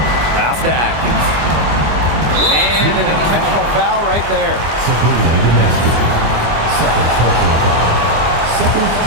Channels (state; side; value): late; left; 24 ms